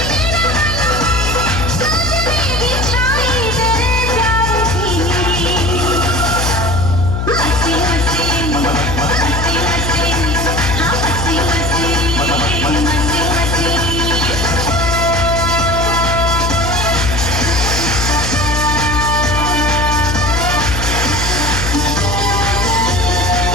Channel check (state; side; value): noise; left; hum, 1 dB below the sound